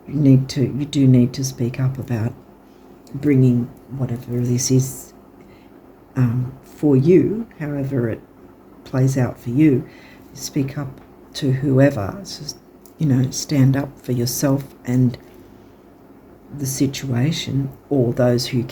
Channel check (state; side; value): identical; both; correlation 1.00